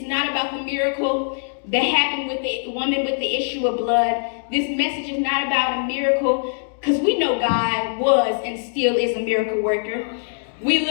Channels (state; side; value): silent; right; digital silence